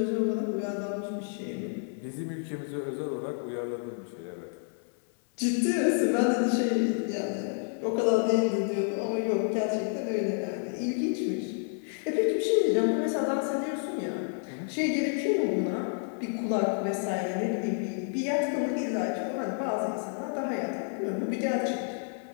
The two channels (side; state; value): right; silent; 58 dB below the other